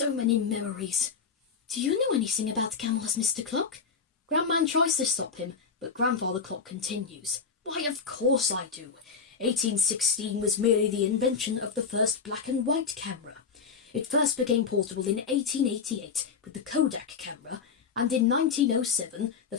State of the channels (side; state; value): right; quieter; 5.6 dB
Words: many memories. Do you know anything about camels, Mr. Clock? Grandman tries to stop him, but Grandfather Clock continues. Why, of course I do. 1816 was merely the invention of the first black and white camera. It first became portable in 1888 with the Kodak camera, and in 1907 the